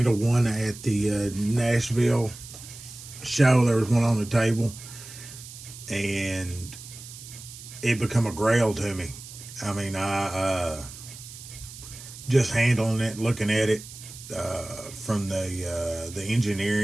one at the Nashville show. There was one on the table, and it become a grail to me. I mean, I just handling it, looking at it from the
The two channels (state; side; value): noise; right; hiss, 15 dB below the sound